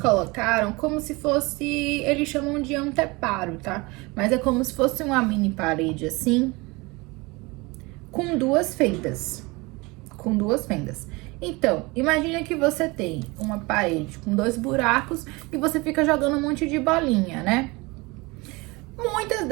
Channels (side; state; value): left; quieter; 24.7 dB